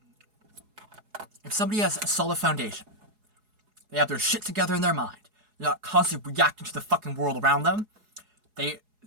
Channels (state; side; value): late; left; 4.8 ms